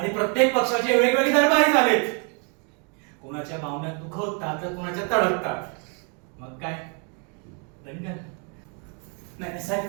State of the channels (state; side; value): quieter; left; 37.8 dB